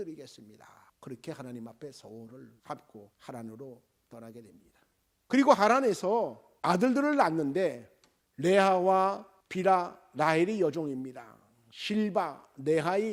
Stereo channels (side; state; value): both; identical; correlation 1.00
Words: 그렇게 하나님 앞에 서울을 갚고 하란으로 떠나게 됩니다. 그리고 하란에서 아들들을 낳는데 레아와 빌하, 라헬이 여종입니다. 실바,